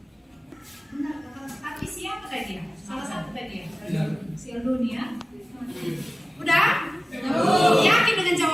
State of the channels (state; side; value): normal; both; correlation 0.96